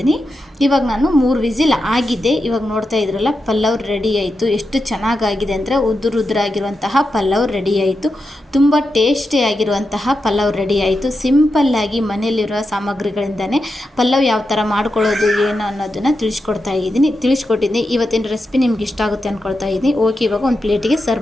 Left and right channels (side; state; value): both; normal; correlation 0.88